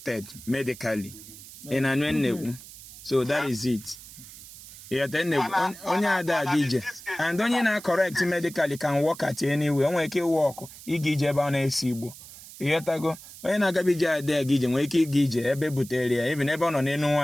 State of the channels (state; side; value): noise; right; hiss, 17 dB below the sound